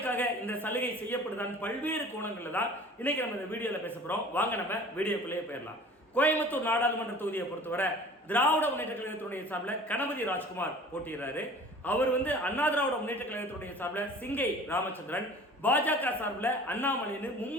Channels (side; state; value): both; normal; correlation 0.45